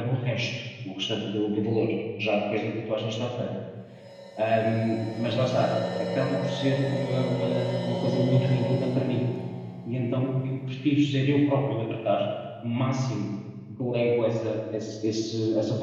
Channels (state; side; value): identical; both; correlation 1.00